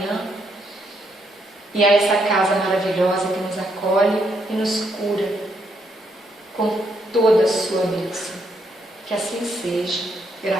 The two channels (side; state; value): both; normal; correlation 0.75